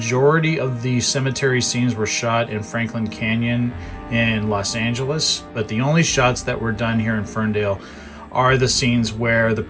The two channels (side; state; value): both; identical; correlation 1.00